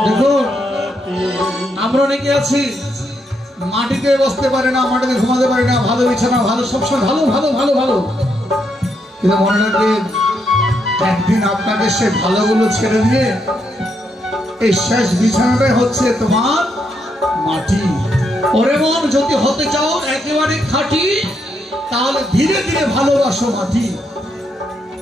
দেখুন আমরা অনেকে আছি মাটিতে বসতে পারে না, মাটিতে ঘুমাতে পারে না, ভালো বিছানা ভালো সবসময় ভালো ভালো ভালো ভালো, কিন্তু মনে রাখবেন একদিন আপনাকে সে ভালোগুলো ছেড়ে দিয়ে এই শেষ বিছানাটাই হচ্ছে তোমার মাটি। ওরে মন যদি হতে চাও একেবারে খাঁটি তাহলে ধীরে ধীরে ভালোবাসো মাটি,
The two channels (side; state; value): both; normal; correlation 0.78